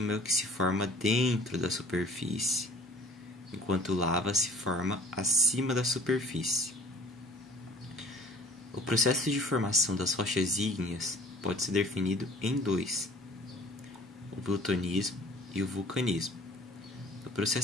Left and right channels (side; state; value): both; normal; correlation 0.49